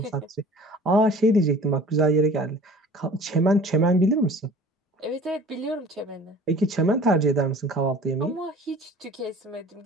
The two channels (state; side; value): normal; both; correlation 0.46